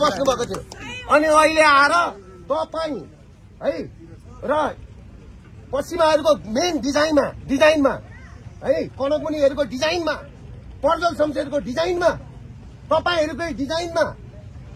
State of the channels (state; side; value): identical; both; correlation 1.00